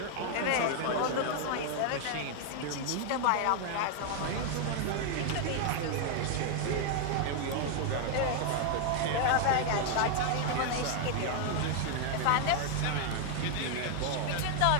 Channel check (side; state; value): both; different; correlation 0.00